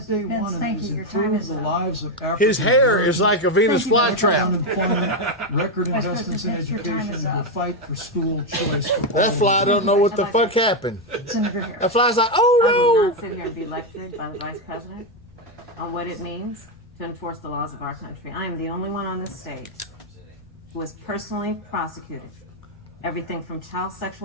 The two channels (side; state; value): both; normal; correlation 0.05